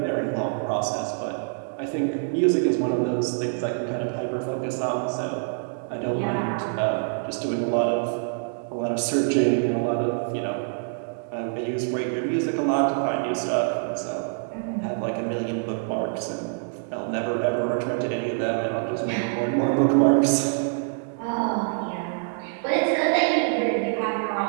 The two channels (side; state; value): left; silent; digital silence